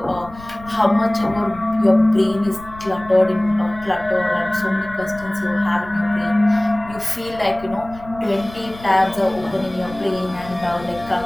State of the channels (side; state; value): left; noise; rumble, 18 dB below the sound